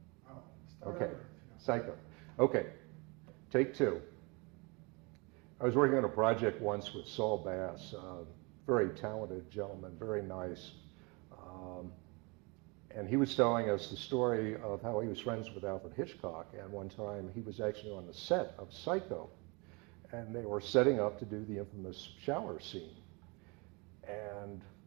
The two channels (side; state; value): left; quieter; 29.0 dB